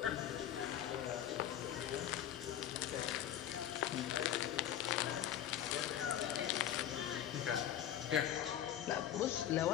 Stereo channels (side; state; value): right; quieter; 11.0 dB